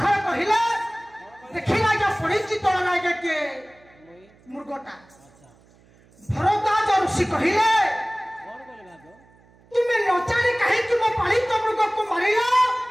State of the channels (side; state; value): right; noise; hum, 29 dB below the sound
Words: कहिले देखिला जे पड़िची तोड़ लागे के मुर्गटा भरद्वाज ऋषि कहिले तुम्हें न जाने कहे कि मैं पालित मुर्ग को मारिला